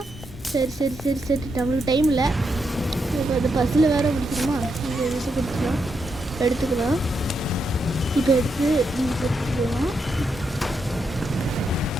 சரி சரி சரி சரி நம்மளுக்கு டைம் இல்லை. இப்போ அந்த பஸ்ஸில் வேறு முடிச்சிடுமா? இங்கே எடுத்துக்கலாம். இப்போ எடுத்துக்கலாம்.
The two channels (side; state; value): both; normal; correlation 0.82